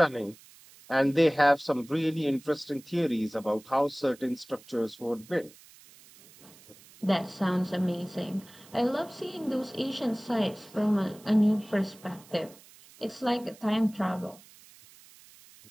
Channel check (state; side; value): noise; right; hiss, 23 dB below the sound